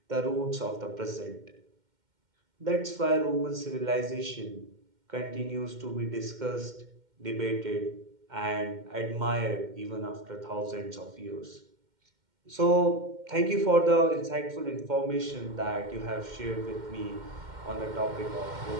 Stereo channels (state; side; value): late; left; 2.1 ms